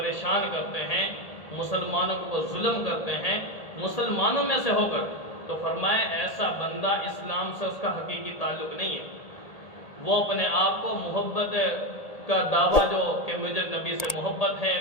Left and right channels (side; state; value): right; late; 1.8 ms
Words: کرتے ہیں، مسلمانوں کو وہ ظلم کرتے ہیں مسلمانوں میں سے ہو کر، تو فرمایا ایسا بندہ اسلام سے اس کا حقیقی تعلق نہیں ہے۔ وہ اپنے آپ کو محبت کا دعویٰ جو کہ مجھے نبی سے محبت ہے،